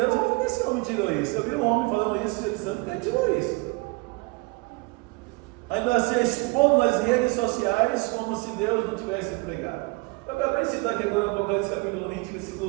onde esse homem tirou isso? Eu vi um homem falando isso, ele santo, que ele tirou isso. ainda se expondo nas redes sociais como se Deus não tivesse pregado. Eu acabei de citar aqui agora no Apocalipse capítulo 20,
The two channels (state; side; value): quieter; left; 26.4 dB